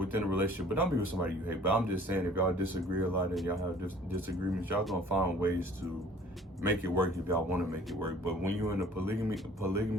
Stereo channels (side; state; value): both; normal; correlation 0.52